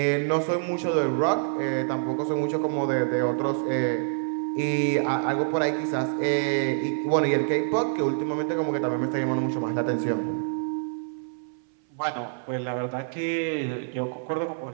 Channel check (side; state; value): left; silent; 60 dB below the other